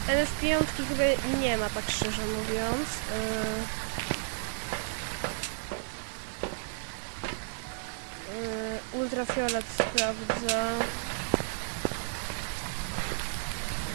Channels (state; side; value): silent; left; digital silence